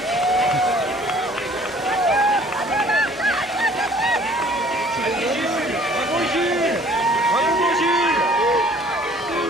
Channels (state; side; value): normal; both; correlation 0.54